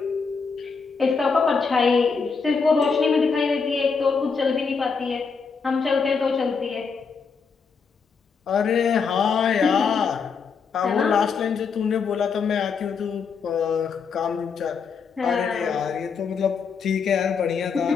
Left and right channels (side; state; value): right; quieter; 5.5 dB